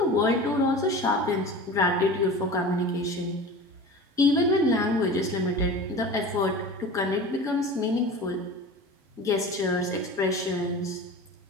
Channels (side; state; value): both; normal; correlation 0.35